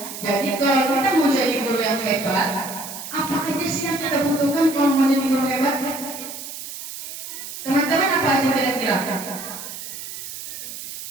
Jadi kalau kita mau jadi guru yang hebat, apa aja sih yang kita butuhkan kalau mau jadi guru hebat? Teman-teman apa aja kira-kira?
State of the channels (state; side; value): noise; right; hiss, 9 dB below the sound